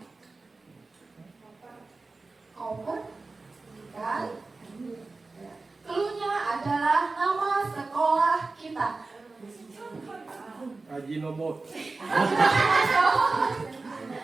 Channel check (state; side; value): quieter; left; 3.7 dB